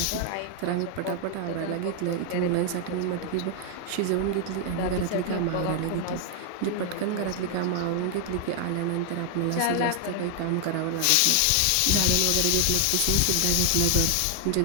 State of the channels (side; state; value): both; different; correlation 0.00